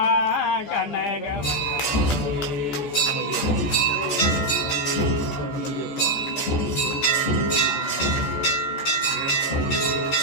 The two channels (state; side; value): late; right; 14 ms